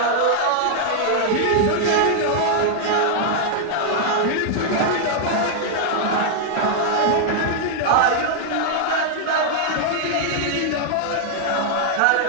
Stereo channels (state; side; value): different; both; correlation 0.00